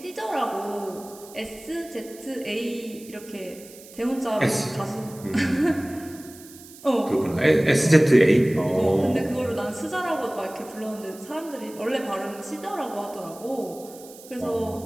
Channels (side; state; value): right; noise; hiss, 20 dB below the sound